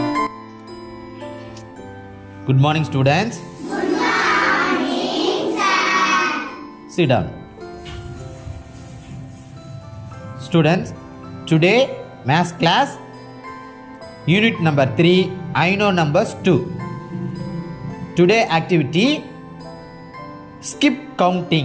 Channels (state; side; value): identical; both; correlation 1.00